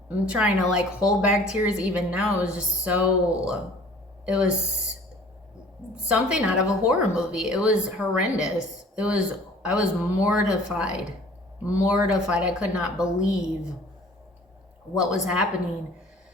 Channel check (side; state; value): both; normal; correlation 0.50